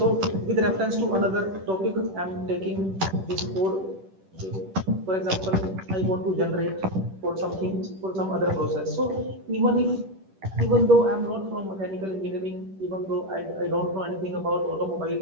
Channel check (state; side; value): late; left; 10 ms